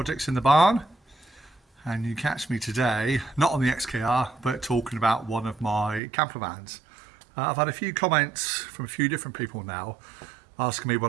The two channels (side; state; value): left; drops out; at 6.0 s